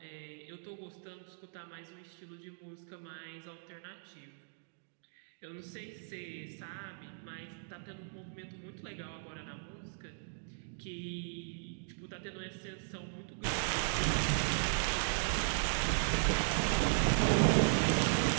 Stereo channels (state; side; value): silent; left; digital silence